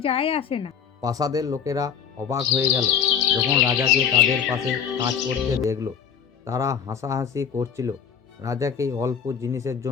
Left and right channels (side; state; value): right; quieter; 7.5 dB